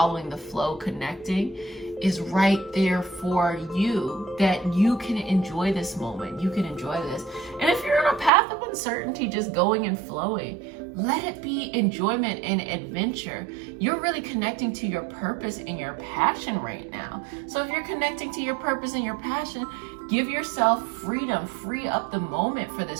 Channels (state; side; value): drops out; left; at 8.3 s